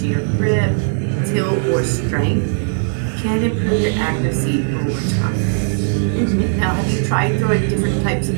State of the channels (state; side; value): silent; left; digital silence